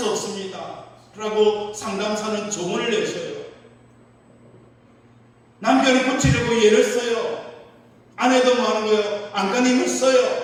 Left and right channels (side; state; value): both; identical; correlation 1.00